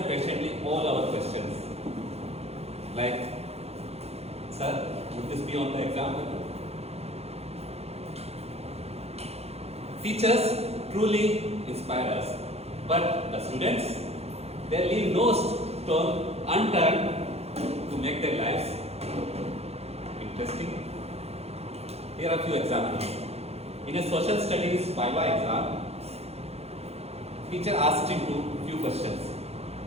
patiently all our questions. Like, sir, would this be on the example? Teachers truly inspire us, but the students, they leave no stone unturned to make their lives interesting. Here are a few examples. In a social studies Viva exam, teacher asked him a few questions.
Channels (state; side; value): late; left; 0.30 ms